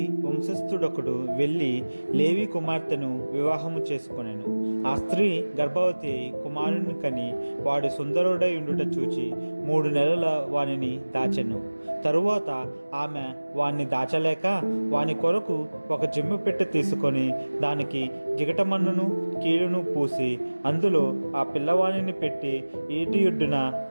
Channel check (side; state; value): both; inverted; correlation -1.00